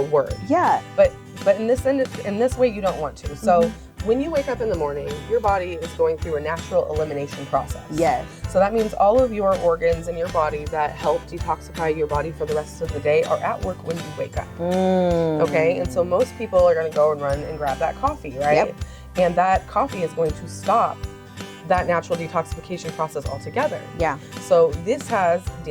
word. Yeah. But in this way, you don't want to. So when you wake up in the morning, your body is going through a natural elimination process. Yes. So that means all of your organs in your body that help detoxify your body for the rest of the day are at work when you wake up. Okay, and so most people are going to go and run and grab that coffee, right? Yep. And that coffee is going to stop that natural detoxification process altogether. Yeah. So this has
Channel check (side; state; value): both; identical; correlation 1.00